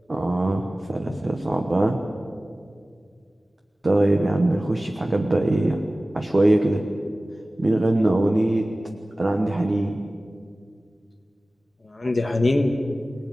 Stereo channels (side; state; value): both; normal; correlation 0.97